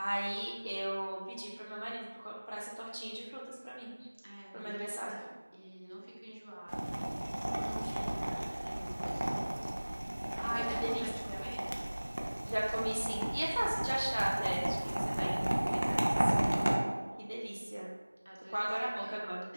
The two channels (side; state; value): both; inverted; correlation -1.00